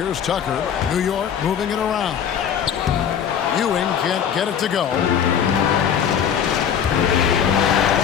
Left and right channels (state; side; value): quieter; right; 8.3 dB